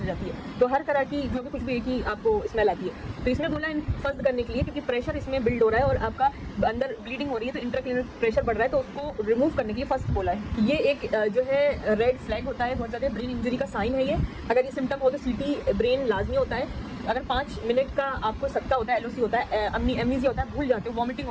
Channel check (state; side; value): identical; both; correlation 1.00